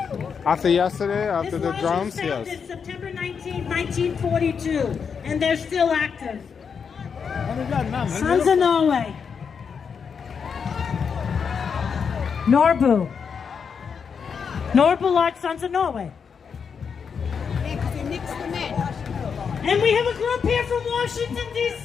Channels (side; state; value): right; quieter; 6.4 dB